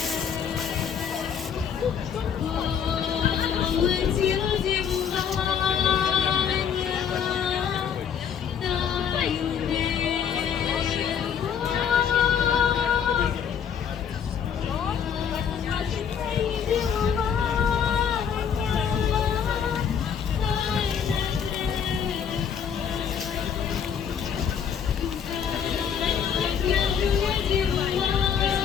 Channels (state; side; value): quieter; right; 7.8 dB